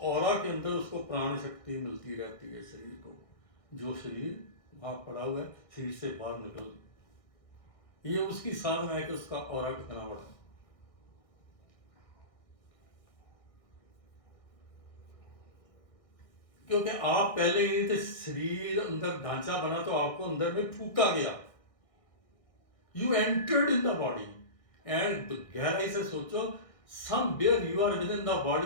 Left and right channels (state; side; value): late; right; 1.7 ms